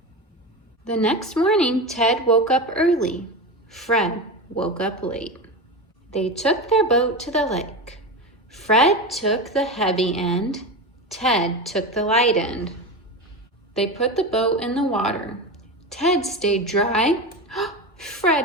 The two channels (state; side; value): normal; both; correlation 0.23